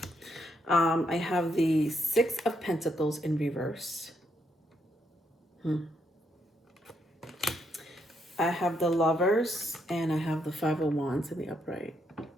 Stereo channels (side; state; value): both; normal; correlation 0.77